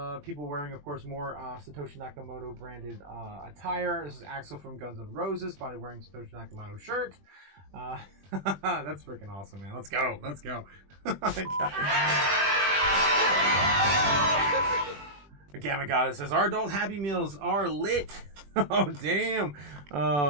People wearing, of course, more Satoshi Nakamoto branded attire. This is Axel from Guns N' Roses, probably wearing Satoshi Nakamoto shirt. That's freaking awesome, man. Let's go. Gamma Goddess says, our adult Happy Meals are lit. Oh, damn.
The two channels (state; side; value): late; left; 21 ms